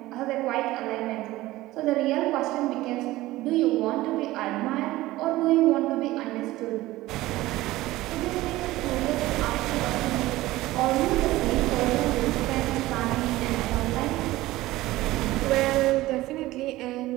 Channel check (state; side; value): quieter; left; 17.5 dB